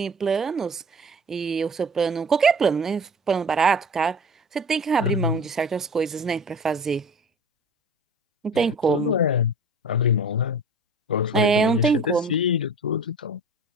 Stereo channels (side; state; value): both; normal; correlation 0.40